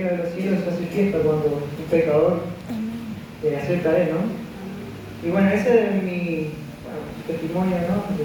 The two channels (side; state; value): both; identical; correlation 1.00